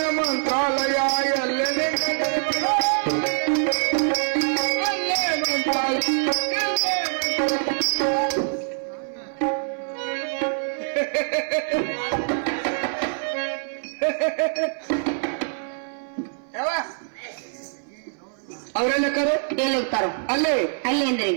ಯಾವ ಅವರೆಲ್ಲ ಎಲ್ಲಿ ಹೋಗ್ತಾರ? ಅಲ್ಲೇ ಅಲ್ಲಿ ಅಂದ್ರೆ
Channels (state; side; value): silent; left; 59 dB below the other